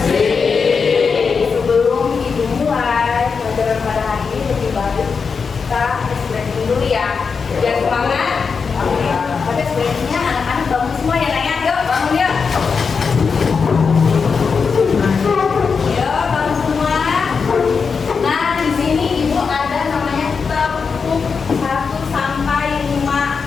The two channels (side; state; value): right; quieter; 5.4 dB